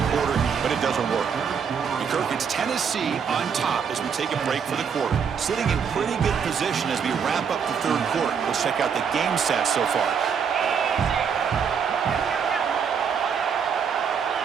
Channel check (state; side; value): quieter; left; 6.8 dB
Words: quarter, but it doesn't work. And Kirk, it's Tennessee on top as we take a break for the quarter. Sitting in pretty good position as we wrap up the 3rd quarter. Let's check out the game stats so far.